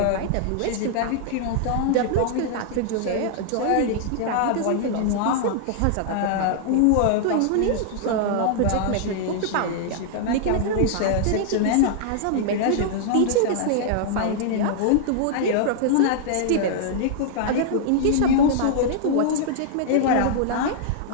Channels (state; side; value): different; both; correlation -0.01